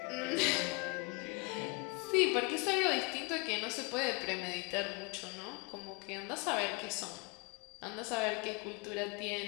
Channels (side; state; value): right; quieter; 29.2 dB